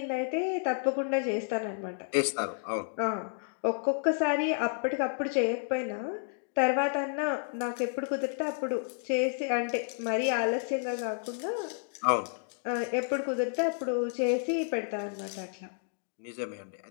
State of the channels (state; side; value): silent; right; digital silence